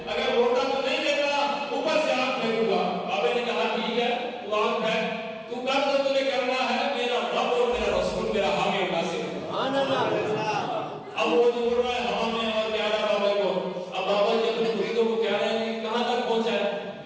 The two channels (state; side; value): identical; both; correlation 1.00